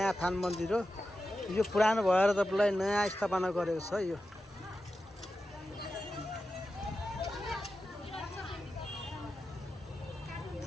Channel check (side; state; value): both; normal; correlation 0.91